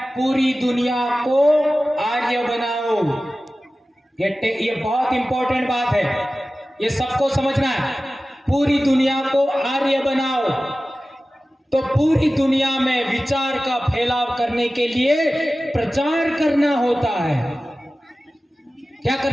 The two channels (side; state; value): both; normal; correlation 0.96